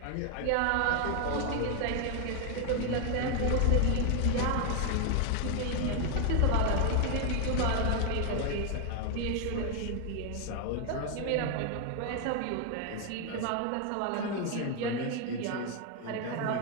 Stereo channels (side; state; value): both; different; correlation 0.00